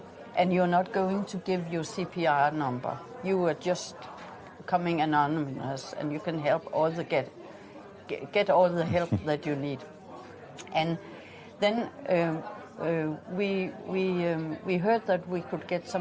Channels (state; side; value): identical; both; correlation 1.00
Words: and you're not going to give your CPR number. You are just coming anonymous, and you can help all the get all the help that you need. And then we heard that we could get